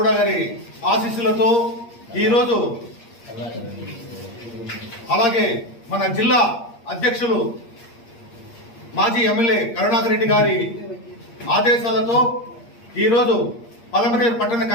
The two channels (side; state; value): right; late; 8.6 ms